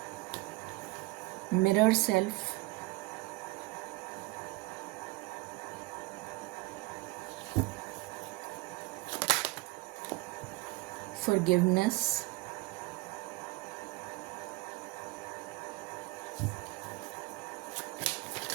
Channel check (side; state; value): left; quieter; 22.7 dB